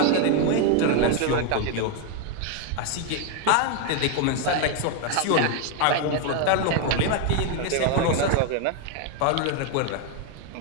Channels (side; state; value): both; different; correlation 0.01